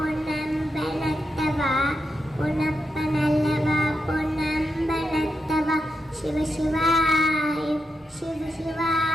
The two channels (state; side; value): normal; both; correlation 0.85